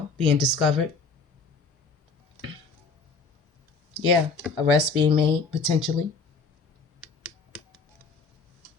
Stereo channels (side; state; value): right; quieter; 4.4 dB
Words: being discovered. Yeah, arrests being made, potentially.